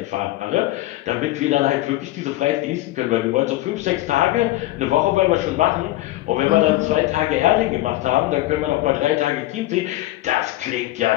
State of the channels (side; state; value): right; quieter; 16.7 dB